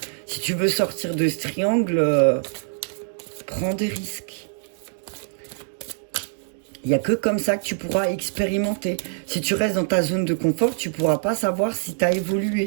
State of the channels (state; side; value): silent; left; digital silence